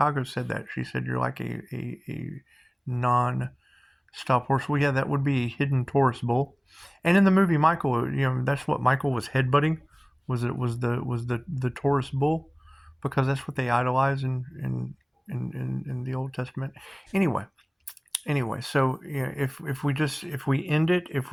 said that. She said you're like a non-stop horse. Well, yeah, that would be a hidden Taurus bull. And in the movie Michael, that's what Michael was headbutting. Was the Taurus bull, because that's what they idolize in the Old Testament. Anyway, so if we end it, if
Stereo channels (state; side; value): identical; both; correlation 1.00